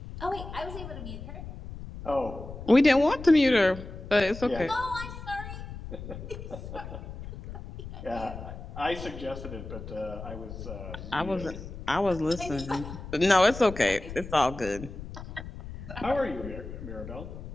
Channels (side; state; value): left; noise; rumble, 11 dB below the sound